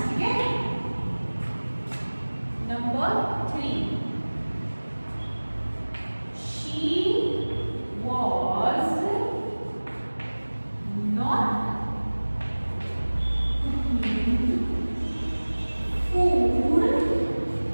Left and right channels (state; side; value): inverted; both; correlation -1.00